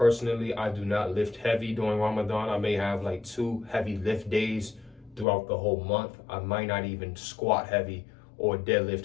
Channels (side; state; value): right; drops out; at 5.2 s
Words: I do not lift heavy during Ramadan. I may have like 2 heavy lift days throughout the whole month. I might not even squat heavy or deadlift